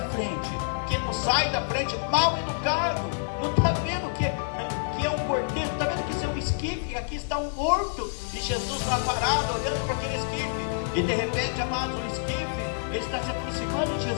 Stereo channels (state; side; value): silent; right; digital silence